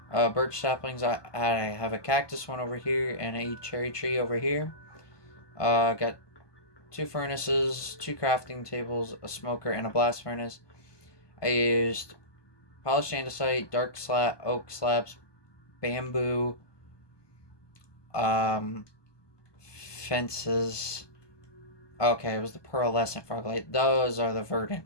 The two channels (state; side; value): late; right; 1.2 ms